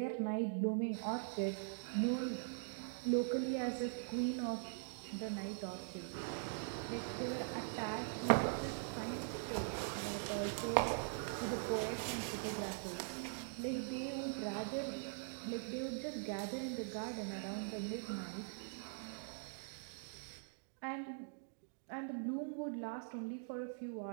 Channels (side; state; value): left; silent; digital silence